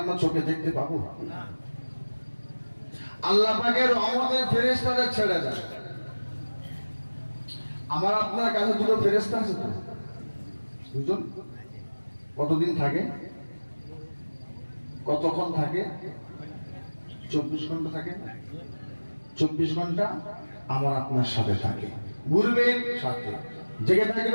আমরা চোখে দেখতে পাবো? আল্লাহ পাকের রহমতের ফেরেশতাদের ছেড়ে যায়। আমার আপনার কাছে দুটো ফেরেশতা আছে তো, দুজন। কতদিন থাকে? কতক্ষণ থাকে? 24 ঘন্টা থাকে। 24 ঘন্টা আমার আপনার সাথে থাকে। ঘুরবেন সাথে, জেগে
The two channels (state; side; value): inverted; both; correlation -1.00